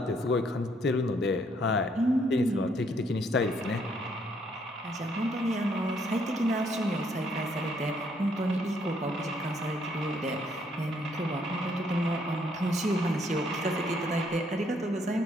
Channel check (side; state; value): both; normal; correlation 0.69